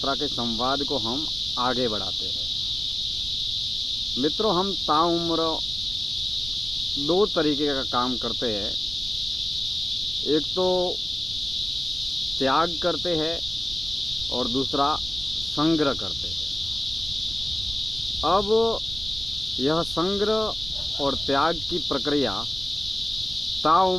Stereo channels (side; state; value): right; noise; rumble, 11 dB below the sound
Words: के संवाद को हम आगे बढ़ाते हैं। मित्रों, हम ताउम्र दो तरीके का काम करते हैं। एक तो त्याग करते हैं और दूसरा संग्रह करते हैं। अब यह संग्रह और त्याग की प्रक्रिया